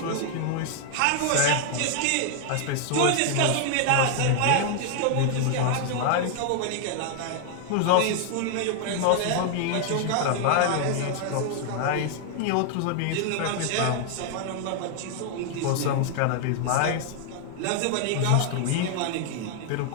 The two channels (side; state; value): both; different; correlation 0.00